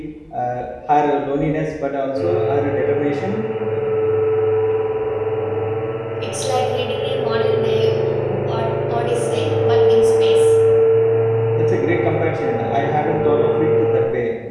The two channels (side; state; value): both; identical; correlation 1.00